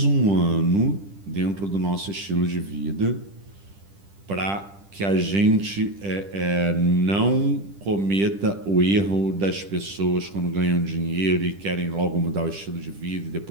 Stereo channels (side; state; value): left; late; 10 ms